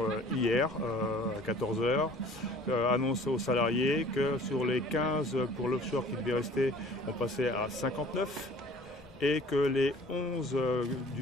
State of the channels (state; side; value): normal; both; correlation 0.49